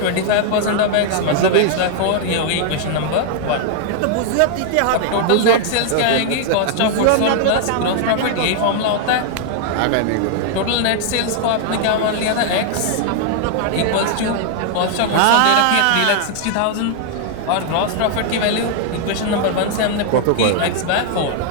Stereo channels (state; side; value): different; both; correlation 0.00